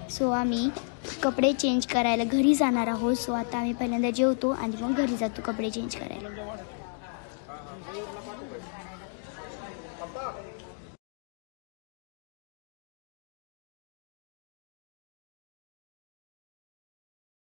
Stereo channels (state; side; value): silent; right; 56 dB below the other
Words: सो आम्ही कपडे चेंज करायला घरी जाणार आहोत. सो आता आम्ही पहिल्यांदा जेवतो आणि मग घरी जातो कपडे चेंज करायला.